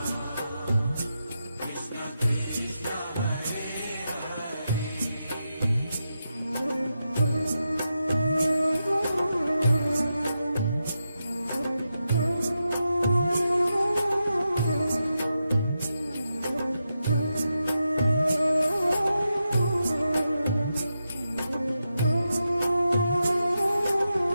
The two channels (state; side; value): inverted; both; correlation -0.88